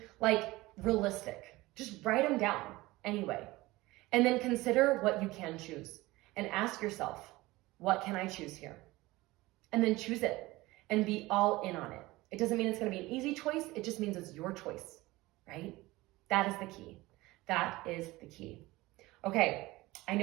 like realistic. Just write them down anyway. And then consider what you can choose. And ask yourself, what can I choose here? And then choose it and be all in on it. It doesn't mean it's going to be an easy choice. It just means it's your choice, right? That is the key. That is the key. Okay, I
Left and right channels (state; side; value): quieter; left; 19.9 dB